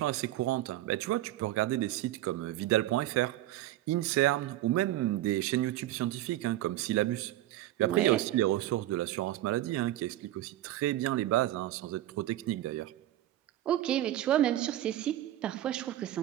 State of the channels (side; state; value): left; quieter; 14.3 dB